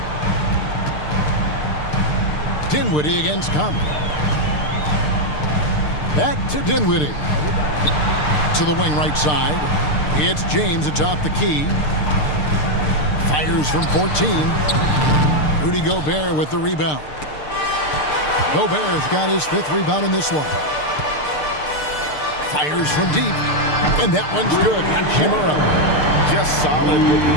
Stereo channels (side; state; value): right; late; 6.7 ms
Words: Dinwiddie against Conley. Back to Dinwiddie. To the wing right side. It's James atop the key. Fires from 14. Rudy Gobert with the rebound. Gobert's got his 5th rebound in this one. Fires from deep. And that one's good. Hachimura. Just solid with the